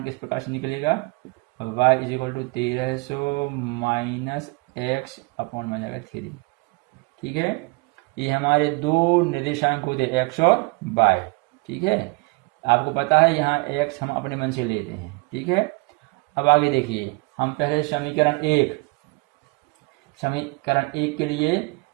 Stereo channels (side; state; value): left; quieter; 27.4 dB